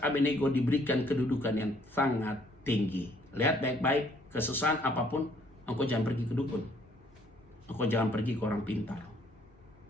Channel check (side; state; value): both; normal; correlation 0.63